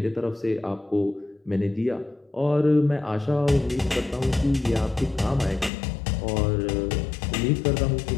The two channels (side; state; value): right; drops out; at 5.7 s